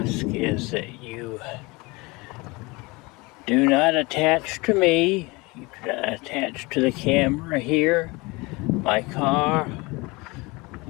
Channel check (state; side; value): quieter; right; 24.7 dB